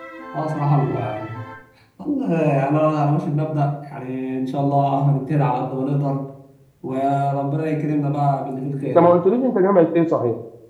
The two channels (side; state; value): both; identical; correlation 1.00